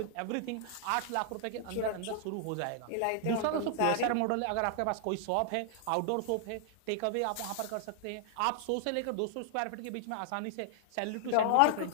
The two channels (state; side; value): different; both; correlation 0.00